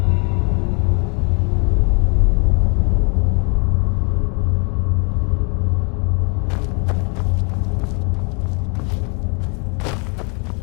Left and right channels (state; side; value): quieter; right; 35.5 dB